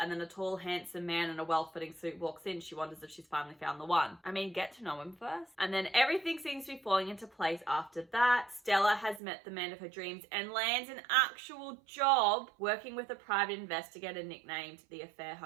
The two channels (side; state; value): left; drops out; at 9.2 s